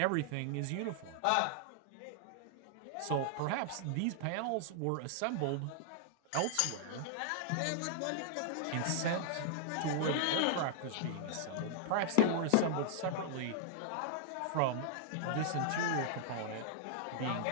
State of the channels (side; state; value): both; different; correlation -0.01